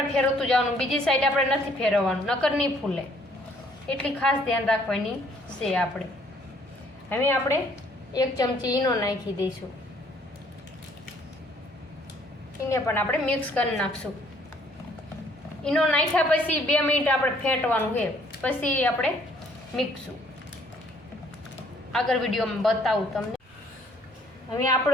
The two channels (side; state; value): both; normal; correlation 0.62